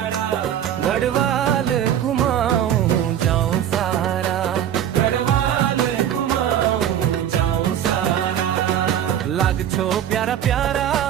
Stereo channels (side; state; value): left; quieter; 10.2 dB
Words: गढ़वाल घुमाऊं जाऊं सारा गढ़वाल घुमाऊं जाऊं सारा लाग छो प्यारा प्यारा